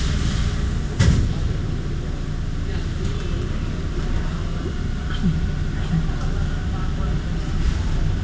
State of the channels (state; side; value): identical; both; correlation 1.00